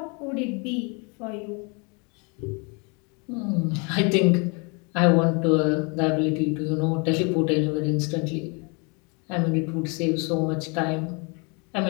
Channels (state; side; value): quieter; right; 32.5 dB